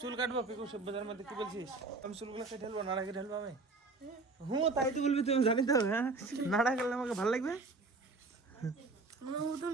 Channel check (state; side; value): quieter; left; 3.7 dB